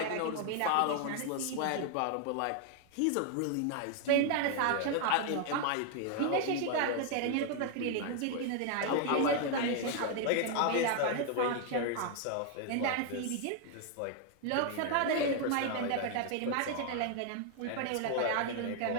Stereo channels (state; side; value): different; both; correlation 0.00